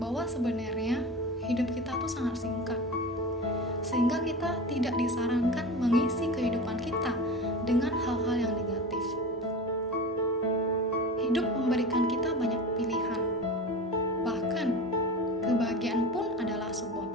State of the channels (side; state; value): both; normal; correlation 0.31